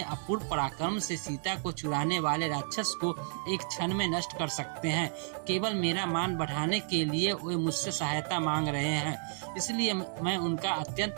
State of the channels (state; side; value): silent; left; 57 dB below the other